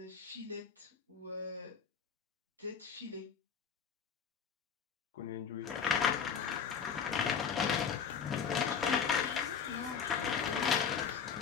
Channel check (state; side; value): quieter; right; 6.8 dB